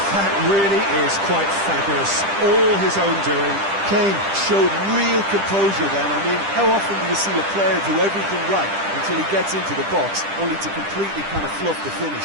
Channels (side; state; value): left; late; 10 ms